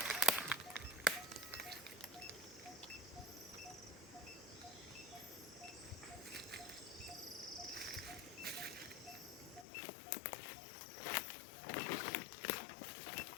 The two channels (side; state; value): right; drops out; at 9.7 s